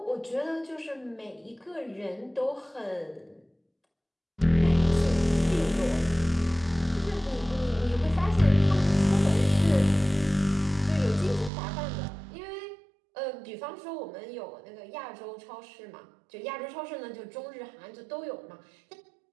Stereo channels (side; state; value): left; drops out; at 11.5 s